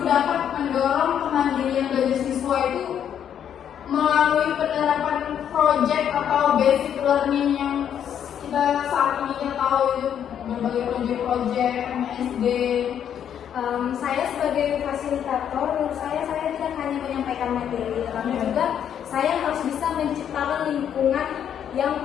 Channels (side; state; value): right; quieter; 9.1 dB